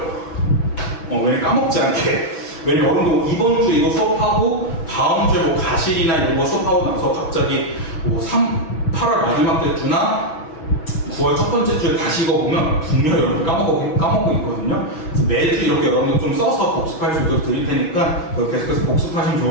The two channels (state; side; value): late; right; 6.1 ms